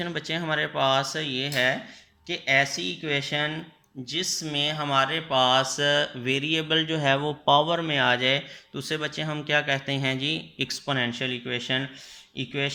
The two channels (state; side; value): identical; both; correlation 1.00